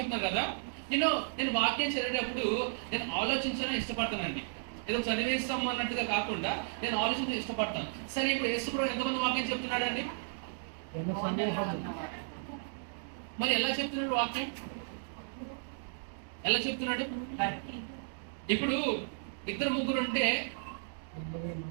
కదా. నేను వాక్యం చదివేటప్పుడు నేను ఆలోచించాలని ఇష్టపడతానండి. ఏదో చదివేస్తాము అన్నట్టుగా కాకుండా నేను ఆలోచించ ఇష్టపడతాను. సరే, ఇప్పుడు యేసు ప్రభు ఎంతమంది వాక్యం చెప్తున్నాడు అండి? మరి ఎలా చెప్తున్నాడు వాక్యం? ఎలా చెప్తున్నాడు? ఇప్పుడు 2 3 ఉంటే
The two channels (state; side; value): silent; left; digital silence